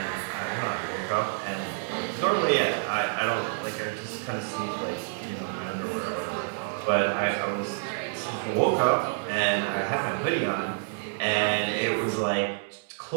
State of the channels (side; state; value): left; silent; 59 dB below the other